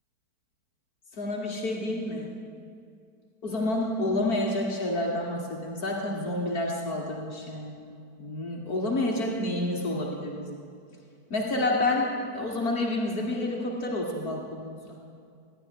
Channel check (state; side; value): late; right; 4.5 ms